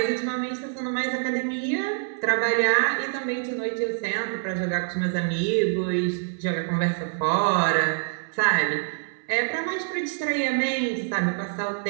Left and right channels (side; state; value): left; silent; digital silence